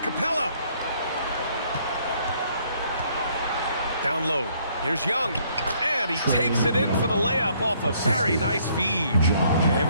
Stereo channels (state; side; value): inverted; both; correlation -0.66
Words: Down low. Here's Young. And he takes it in for the layup off a very nice feed.